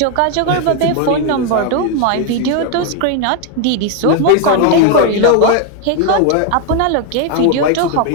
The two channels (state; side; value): different; both; correlation 0.01